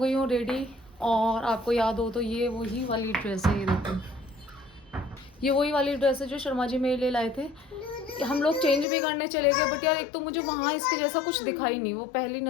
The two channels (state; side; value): drops out; right; at 8.8 s